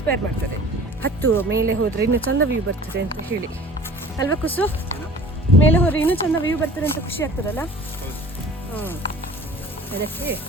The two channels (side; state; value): both; normal; correlation 0.45